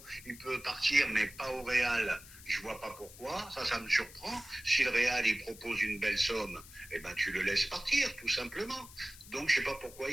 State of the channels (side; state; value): left; noise; hiss, 18 dB below the sound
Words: il peut partir, mais pas au Real, je vois pas pourquoi, ça me surprend. Si le Real, il propose une belle somme, eh ben, tu le laisses partir, tout simplement. Donc, je sais pas pourquoi